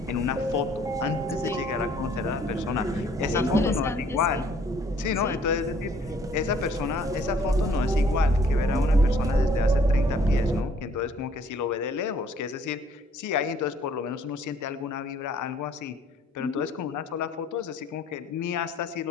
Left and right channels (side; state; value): both; normal; correlation 0.60